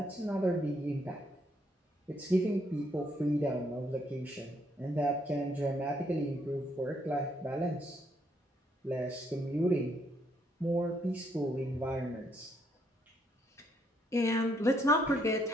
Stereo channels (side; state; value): both; normal; correlation 0.72